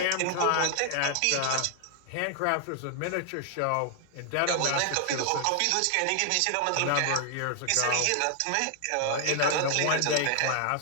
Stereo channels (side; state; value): both; different; correlation 0.00